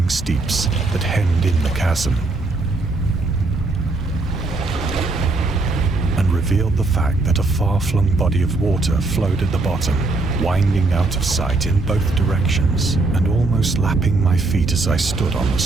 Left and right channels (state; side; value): quieter; left; 3.3 dB